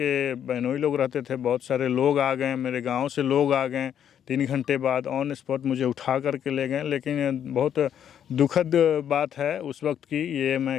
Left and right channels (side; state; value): right; quieter; 9.4 dB